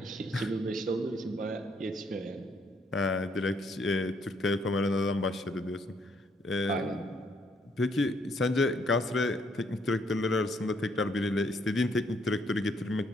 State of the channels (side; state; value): both; normal; correlation 0.69